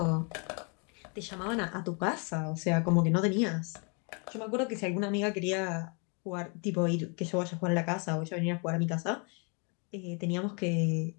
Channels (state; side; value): quieter; right; 35.8 dB